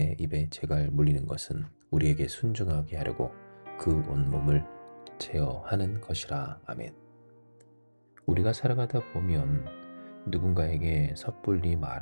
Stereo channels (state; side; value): inverted; both; correlation -1.00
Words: 입에 재갈 물리는 것은 우리에게 순종하게 하려고 그 온몸을 제어하는 것이라. 아멘. 우리가 살아가다 보면 누군가에게 섣불리